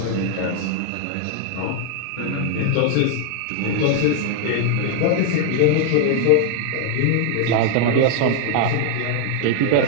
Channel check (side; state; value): both; different; correlation 0.00